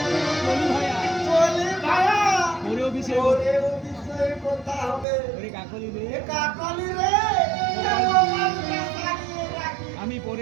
চলে ভাইয়া ওরে বিষয়ে কথা হবে। কাকলি রে কাকলি রে আমি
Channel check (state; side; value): drops out; left; at 5.1 s